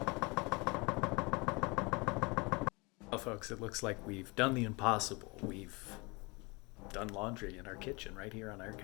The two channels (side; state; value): right; quieter; 27.4 dB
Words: Well, folks, it looks like we've done the impossible. We've done laundry in our kitchen right here on our